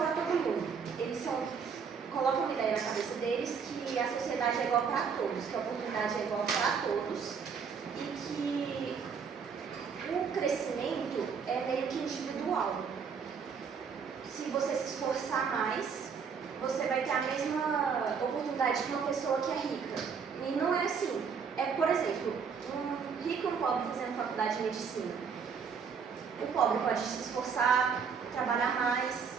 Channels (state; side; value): quieter; left; 6.2 dB